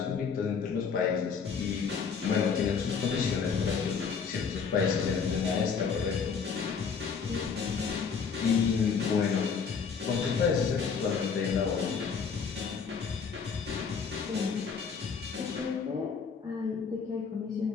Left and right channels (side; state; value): right; quieter; 6.0 dB